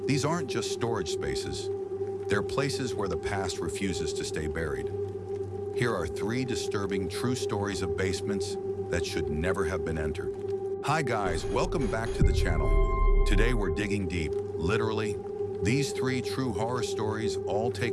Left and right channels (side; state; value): both; identical; correlation 1.00